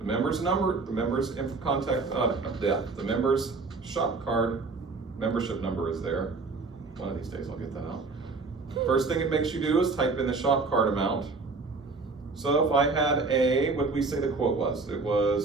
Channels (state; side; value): quieter; left; 3.9 dB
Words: member's number, the member's the member's shop card, membership number is there. One of these days I'll get that out. First thing it makes you do is type in the shop card amount. So if I had what did we say the quote was? It